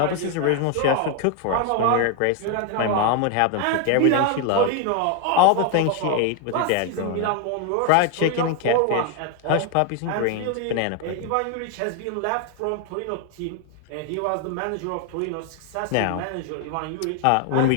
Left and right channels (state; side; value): different; both; correlation 0.01